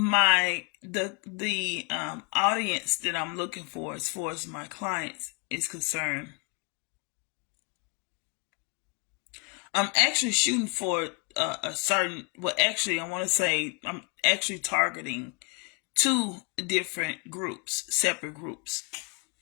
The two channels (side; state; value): right; quieter; 33.9 dB